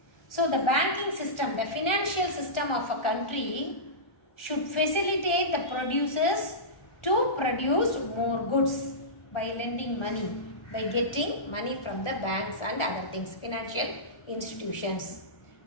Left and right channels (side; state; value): right; late; 1.4 ms